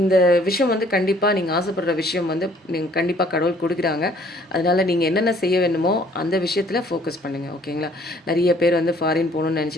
விஷயம் வந்து கண்டிப்பாக நீங்கள் ஆசைப்படுற விஷயம் வந்து நீங்கள் கண்டிப்பாக கடவுள் கொடுக்குறாங்க. அதனால் நீங்கள் என்னென்ன செய்ய வேணுமோ அந்த விஷயத்தில் ஃபோக்கஸ் பண்ணுங்கள். ஓகேங்களா. நிறைய பேர் வந்து ஃபாரின் போகணுன்னு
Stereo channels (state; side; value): normal; both; correlation 0.59